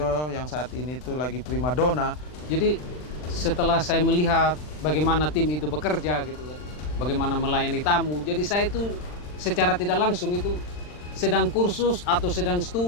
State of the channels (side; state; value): right; late; 40 ms